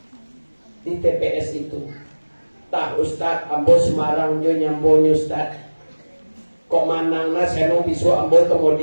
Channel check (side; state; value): both; inverted; correlation -1.00